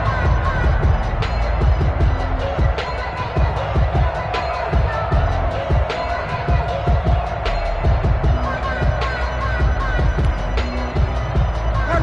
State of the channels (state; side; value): identical; both; correlation 1.00